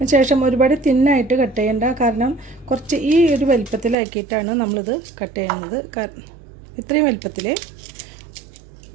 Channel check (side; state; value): left; drops out; at 4.0 s